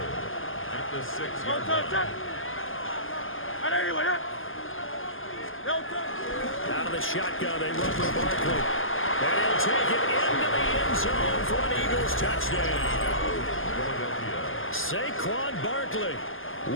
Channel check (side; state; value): right; late; 0.59 ms